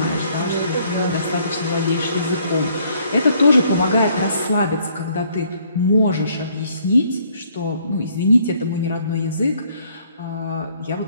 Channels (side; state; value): both; inverted; correlation -0.65